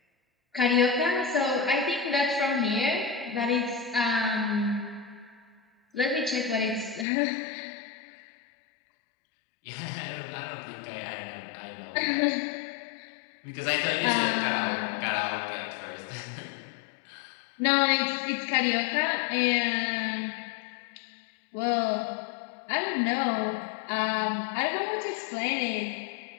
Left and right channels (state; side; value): drops out; right; at 7.1 s